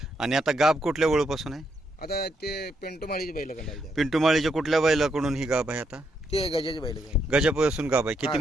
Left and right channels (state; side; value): normal; both; correlation 0.78